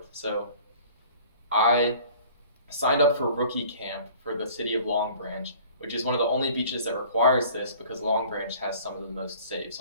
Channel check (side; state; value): both; inverted; correlation -0.49